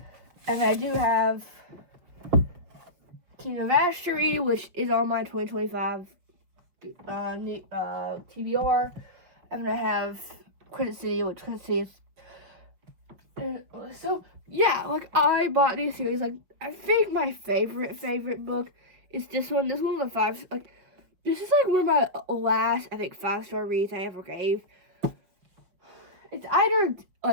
And I do have Kingdom of Astery, which is on my 2025 TBR. I'm gonna have Credit City, which Credit City is. So yeah, like I bought these series. Like I think my favorite book is this one. This one's a 5. Like this is like one of my last, I think, 5-star reads I ever gave. It's either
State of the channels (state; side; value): late; left; 5.6 ms